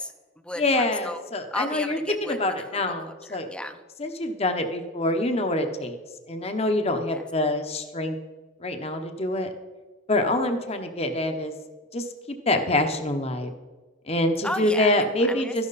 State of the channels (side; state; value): both; normal; correlation 0.25